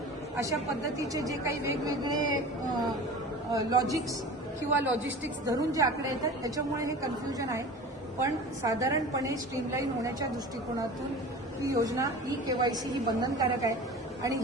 अशा पद्धतीचे जे काही वेगवेगळे लॉजिक्स किंवा लॉजिस्टिक्स धरून जे आकडे येतात त्याच्यामुळे हे कन्फ्युजन आहे. पण साधारणपणे स्ट्रीमलाईन होण्याच्या दृष्टिकोनातून ही योजना ई केवायसी ही बंधनकारक आहे आणि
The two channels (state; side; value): normal; both; correlation 0.36